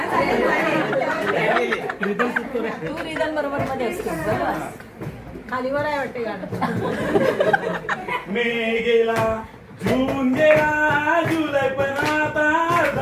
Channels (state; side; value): identical; both; correlation 1.00